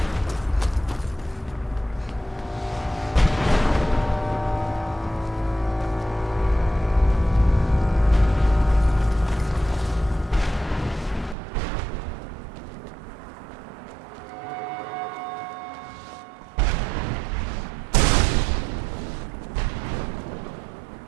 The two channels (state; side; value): drops out; left; at 11.4 s